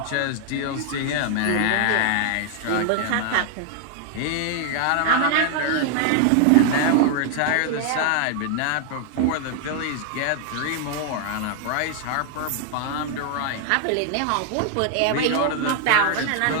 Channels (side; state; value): both; different; correlation 0.00